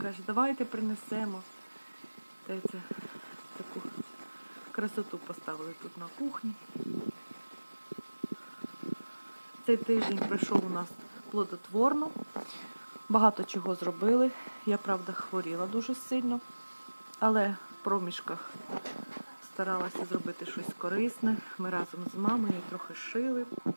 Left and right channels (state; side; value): inverted; both; correlation -1.00